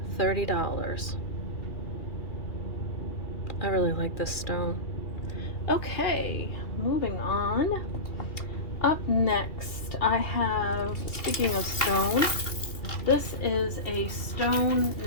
$30. I really like this stone. Okay, moving on. Up next, I have, speaking of stone, this is a stone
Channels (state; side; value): late; right; 2.4 ms